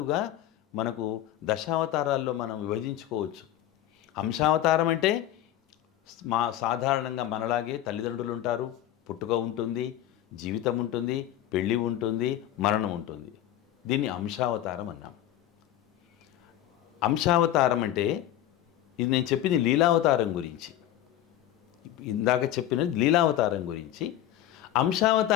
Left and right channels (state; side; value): quieter; right; 12.6 dB